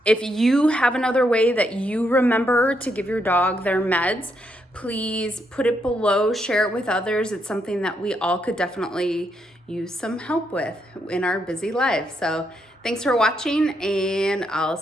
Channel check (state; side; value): normal; both; correlation 0.78